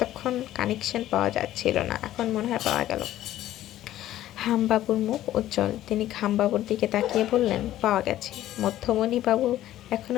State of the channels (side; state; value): right; quieter; 13.6 dB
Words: কানেকশন পাওয়া যাচ্ছিল না, এখন মনে হয় পাওয়া গেল। হামবাবুর মুখ উজ্জ্বল। তিনি খামবাবুর দিকে তাকিয়ে বললেন, পাওয়া গেছে। মধ্যমণি বাবু